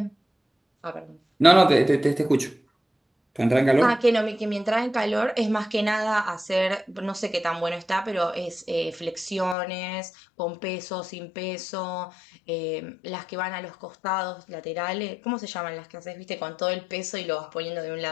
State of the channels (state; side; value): drops out; right; at 9.6 s